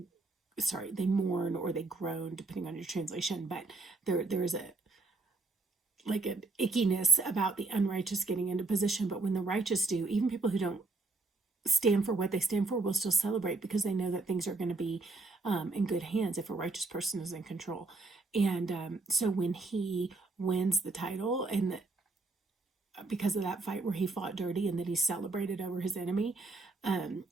mourn, or they groan, depending on your translation. But there is an ickiness about the unrighteous getting into position. But when the righteous do, even people who don't stand for what they stand for will still celebrate because they know that things are going to be in good hands if a righteous person is in control. And so when he wins the title, and because of that fight where he fought dirty and then he celebrated over his enemy,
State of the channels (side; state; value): left; quieter; 3.5 dB